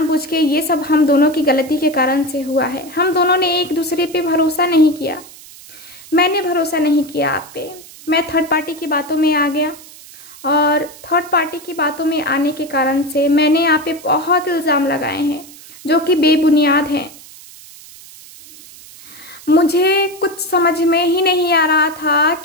के, ये सब हम दोनों की गलती के कारण से हुआ है। हम दोनों ने एक दूसरे पे भरोसा नहीं किया, मैंने भरोसा नहीं किया आप पे, मैं थर्ड पार्टी की बातों में आ गया और थर्ड पार्टी की बातों में आने के कारण से मैंने आप पे बहुत इल्जाम लगाए हैं जो कि बेबुनियाद हैं। मुझे कुछ समझ में ही नहीं आ रहा था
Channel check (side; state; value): right; noise; hiss, 19 dB below the sound